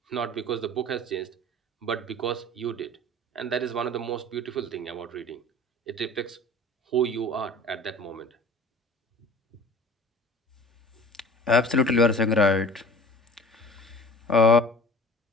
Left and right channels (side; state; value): both; normal; correlation 0.43